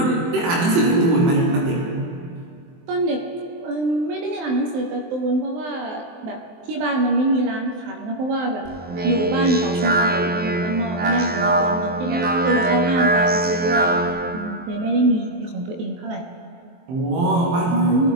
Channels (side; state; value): left; late; 23 ms